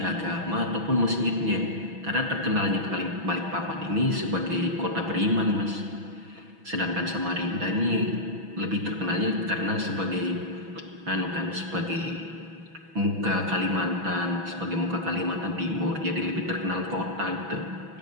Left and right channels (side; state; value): left; late; 6.1 ms